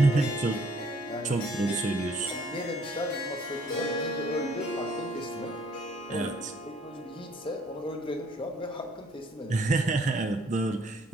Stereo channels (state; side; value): normal; both; correlation 0.62